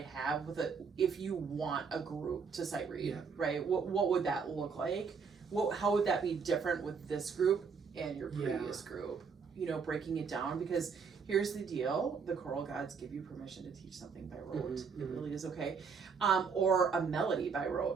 have with if you want a group to sight read, Yeah. right? What would that look like? How would that be different with this group and your previous group? Breaking it down, because here's the deal: the choral gods give you permission to teach something by rote. It really is okay, or a melody by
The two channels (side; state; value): left; quieter; 5.7 dB